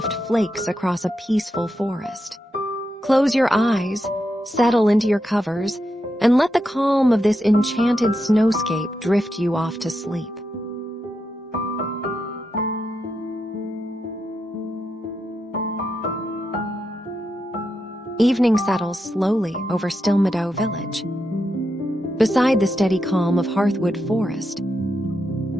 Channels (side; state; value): both; normal; correlation 0.85